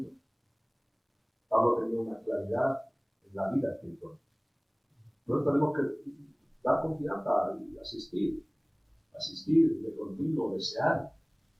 Pablo tenía una claridad en la vida espiritual. Nosotros tenemos que dar confianza y asistir de continuo, desear.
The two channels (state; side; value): identical; both; correlation 1.00